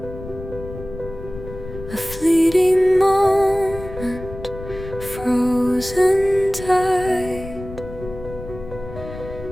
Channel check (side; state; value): left; noise; rumble, 12 dB below the sound